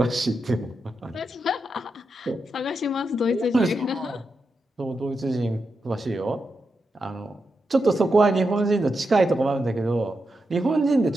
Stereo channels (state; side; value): normal; both; correlation 0.86